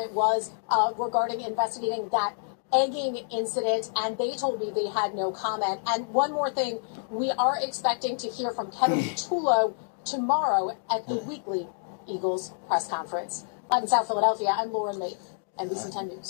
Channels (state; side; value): silent; right; digital silence